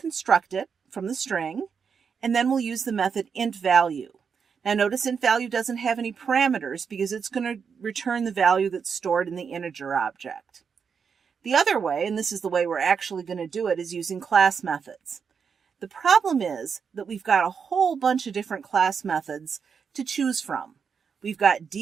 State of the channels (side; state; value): left; quieter; 6.3 dB